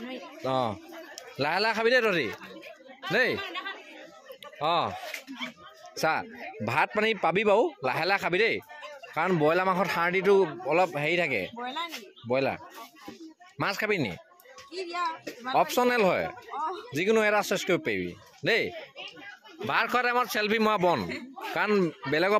অঁ লাহে খাবি দেই তহঁতি দেই অঁ চা ভাত পানী পাবি বাৰু লাহে খাবি দেই কাৰণ ব্ৰইলাৰ মাংসত হাৰ্ডিটো অলপ হেৰি থাকে ব্ৰইলাৰ মাছ খাবি নি অপশ্যনেল হয় যিকোনো এটা চইচ কৰিব পাৰিবি দেই ভাত খোৱা টাইমত চেল্ফি মৰা বন কাৰণ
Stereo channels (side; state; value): both; identical; correlation 1.00